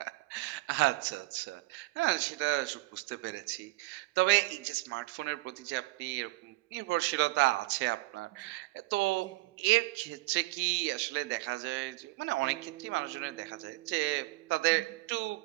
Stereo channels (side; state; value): left; quieter; 21.5 dB